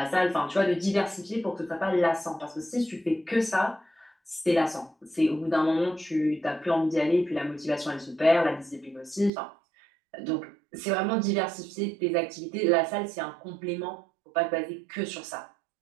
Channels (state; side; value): drops out; left; at 9.3 s